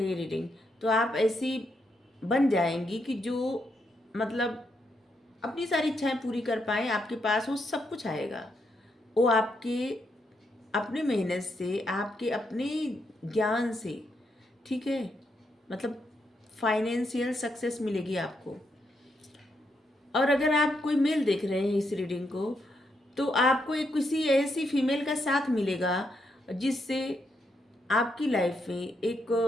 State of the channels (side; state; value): both; normal; correlation 0.79